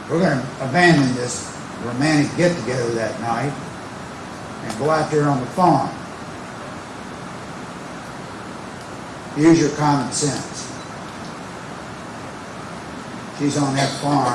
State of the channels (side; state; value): both; identical; correlation 1.00